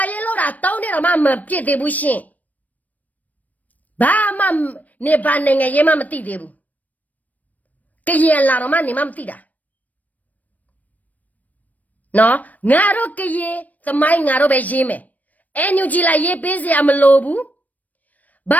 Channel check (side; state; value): right; late; 0.076 ms